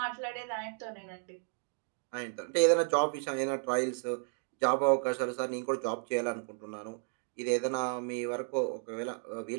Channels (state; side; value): silent; left; 56 dB below the other